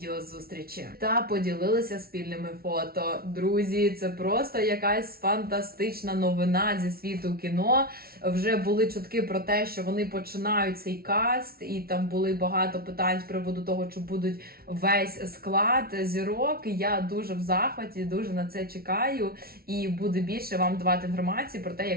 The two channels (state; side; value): late; left; 0.44 ms